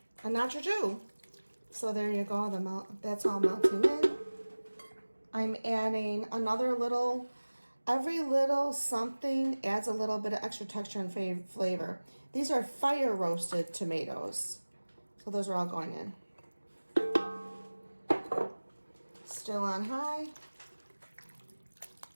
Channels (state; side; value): inverted; both; correlation -1.00